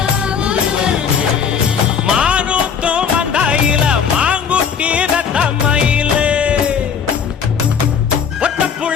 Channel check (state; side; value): quieter; right; 7.0 dB